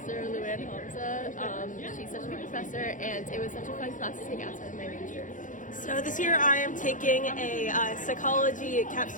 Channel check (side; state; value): right; late; 0.37 ms